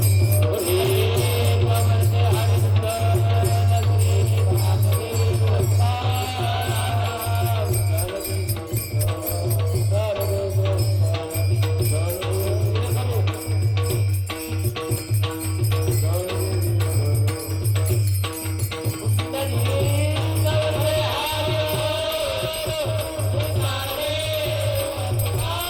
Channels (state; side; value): identical; both; correlation 1.00